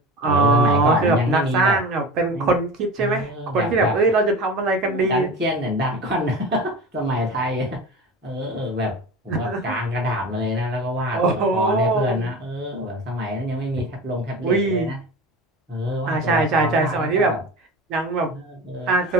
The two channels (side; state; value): both; normal; correlation 0.32